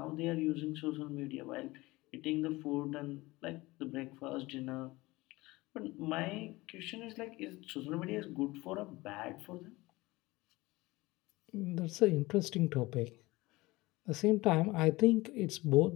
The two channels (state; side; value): quieter; right; 20.8 dB